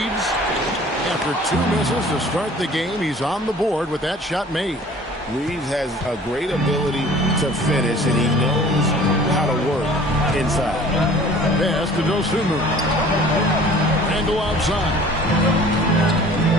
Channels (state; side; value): normal; both; correlation 0.48